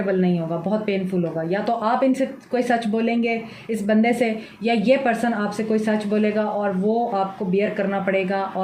नहीं होगा, बहुत पेनफुल होगा। या तो आप इनसे कोई सच बोलेंगे इस बंदे से, या ये पर्सन आपसे कोई सच बोलेगा और वो आपको बियर करना पड़ेगा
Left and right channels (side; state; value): both; identical; correlation 1.00